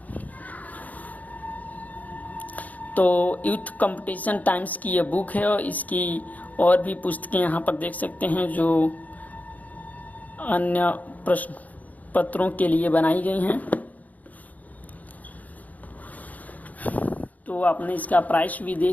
तो यूथ कंपटीशन टाइम्स की ये बुक है, और इसकी और भी पुस्तकें यहाँ पर देख सकते हैं जो अन्य प्रश्न पत्रों के लिए बनाई गई हैं। तो आपने इसका प्राइस भी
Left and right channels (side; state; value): right; late; 0.077 ms